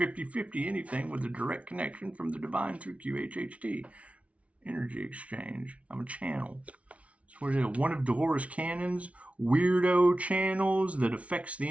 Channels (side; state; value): left; late; 0.064 ms